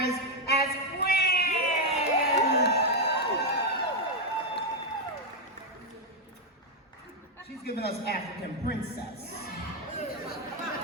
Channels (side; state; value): both; normal; correlation 0.03